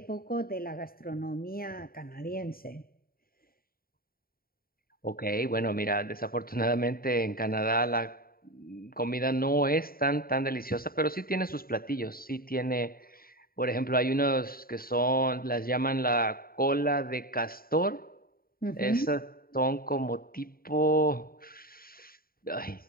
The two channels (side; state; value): right; late; 0.43 ms